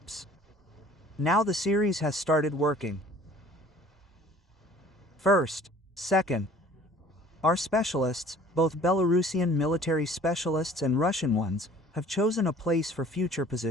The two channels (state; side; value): normal; both; correlation 0.51